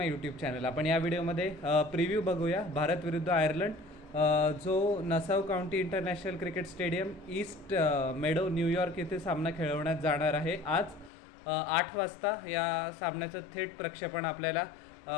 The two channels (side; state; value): right; drops out; at 11.1 s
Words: YouTube channel. आपण या व्हिडिओमध्ये प्रिव्ह्यू बघूया भारत विरुद्ध आयर्लंड, जो Nassau County International Cricket Stadium East Meadow New York येथे सामना खेळवण्यात जाणार आहे. आज 8 वाजता या सामन्याचं थेट प्रक्षेपण आपल्याला